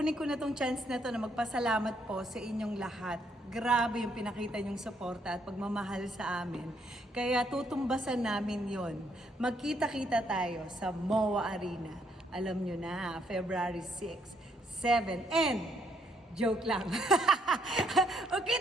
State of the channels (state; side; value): normal; both; correlation 0.72